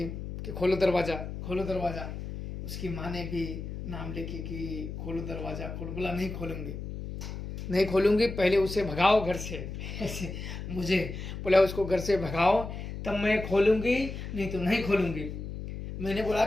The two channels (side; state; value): left; noise; hum, 8 dB below the sound